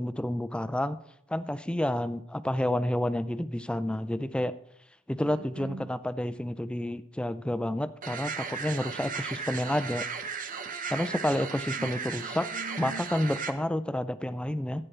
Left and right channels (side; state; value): both; normal; correlation 0.86